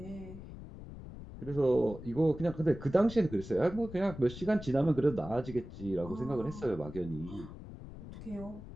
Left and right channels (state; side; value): noise; left; rumble, 13 dB below the sound